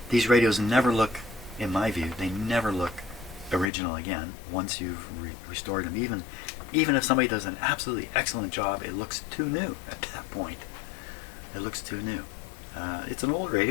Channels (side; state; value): right; drops out; at 3.7 s